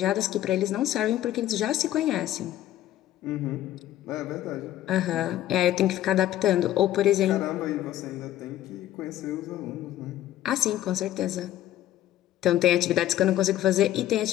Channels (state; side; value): quieter; right; 13.2 dB